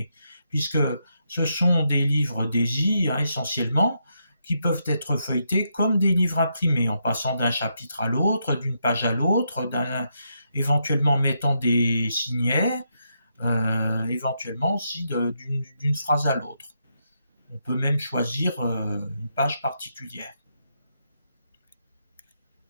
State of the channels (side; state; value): both; inverted; correlation -0.80